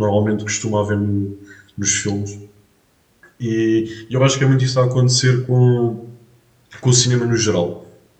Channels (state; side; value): identical; both; correlation 1.00